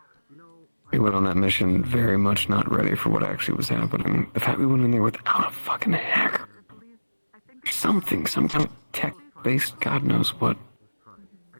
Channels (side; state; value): both; inverted; correlation -1.00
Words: You know, We went on that mission very much not ready for what actually was happening. The fact we went in there without a fucking hacker. I believe, I think Something, some kind of tech-based God knows what. let's try. I